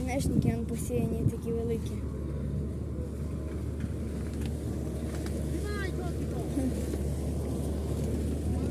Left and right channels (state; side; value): identical; both; correlation 1.00